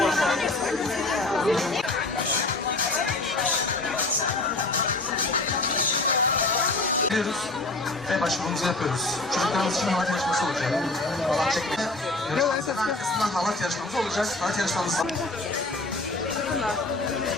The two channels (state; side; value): quieter; right; 3.0 dB